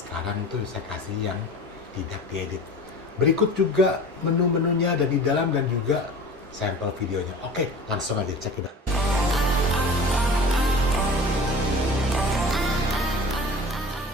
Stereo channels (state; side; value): normal; both; correlation 0.38